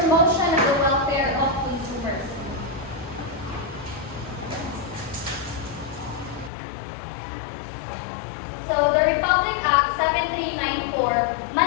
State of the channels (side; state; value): right; drops out; at 6.5 s